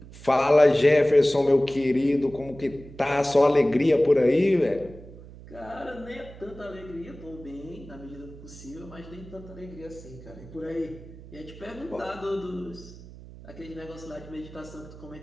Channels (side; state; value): right; noise; hum, 17 dB below the sound